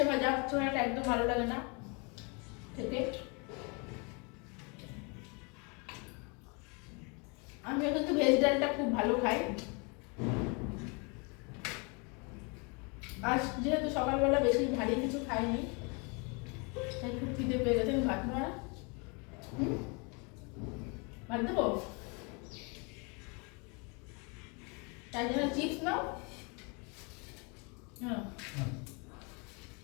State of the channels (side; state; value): right; quieter; 32.2 dB